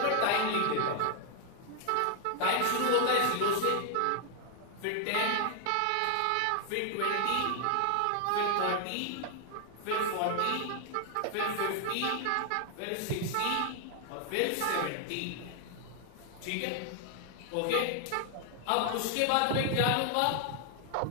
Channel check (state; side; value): different; both; correlation 0.00